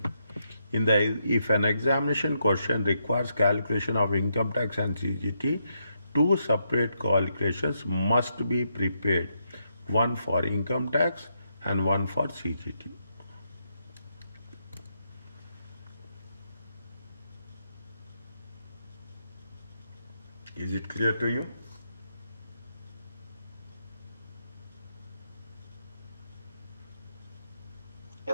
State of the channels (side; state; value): both; inverted; correlation -0.80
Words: If an examination question requires calculation of income tax and CGT, two separate calculations must be prepared, one for income tax and one for CGT. Is it clear to you?